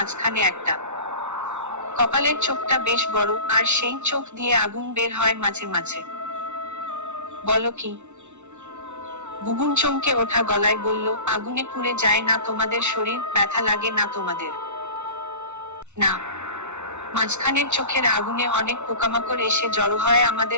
একটা। কপালের চোখটা বেশ বড়, আর সেই চোখ দিয়ে আগুন বের হয় মাঝে মাঝে। বলো কি? বুবুন চমকে ওঠা গলায় বলল, আগুনে পুড়ে যায় না তোমাদের শরীর? ব্যথা লাগে না তোমাদের? না। মাঝখানের চোখের আগুনে অনেক পোকামাকড় এসে জড়ো হয়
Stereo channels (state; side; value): late; left; 0.83 ms